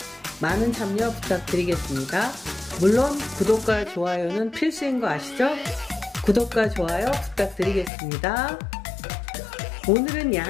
많은 참여 부탁드리겠습니다. 물론 구독과 좋아요는 필수인 거 아시죠? 구독과 좋아요 부탁드리겠습니다. 오늘은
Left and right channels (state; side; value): drops out; right; at 7.9 s